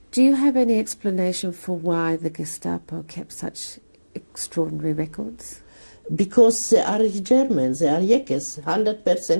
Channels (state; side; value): inverted; both; correlation -1.00